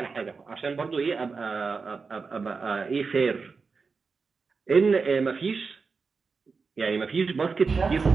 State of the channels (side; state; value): left; quieter; 4.8 dB